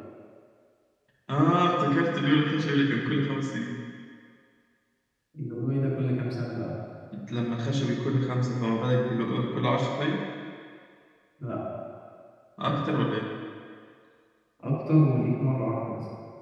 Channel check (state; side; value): identical; both; correlation 1.00